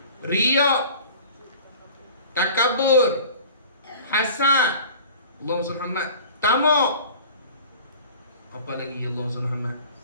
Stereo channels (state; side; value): inverted; both; correlation -0.43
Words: Riya, takabur, hasad, Allahumma salli Muhammad, tamak. Apa lagi Allahumma salli Muhammad?